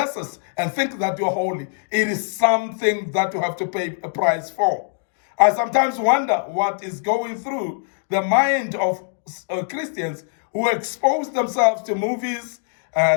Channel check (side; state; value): right; silent; digital silence